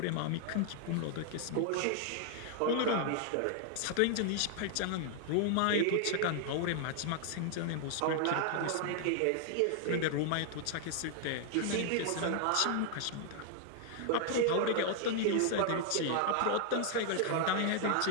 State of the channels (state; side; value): different; both; correlation 0.00